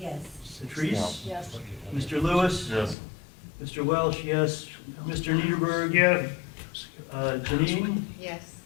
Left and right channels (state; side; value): drops out; right; at 3.0 s